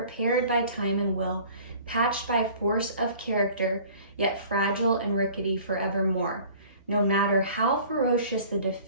by time and will, patched by force of character, yet fragile and rickety forevermore. No matter how ferocious the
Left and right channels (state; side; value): inverted; both; correlation -0.48